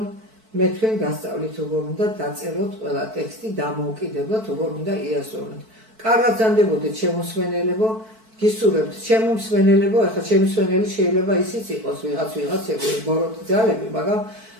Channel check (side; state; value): left; late; 4.5 ms